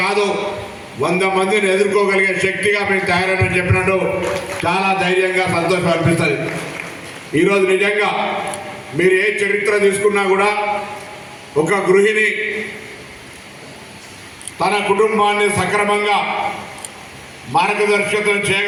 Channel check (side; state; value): both; identical; correlation 1.00